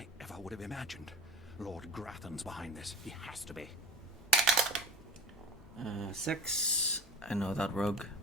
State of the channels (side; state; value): both; normal; correlation 0.35